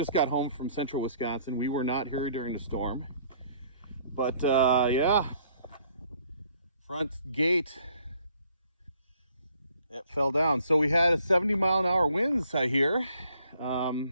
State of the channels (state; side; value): inverted; both; correlation -0.62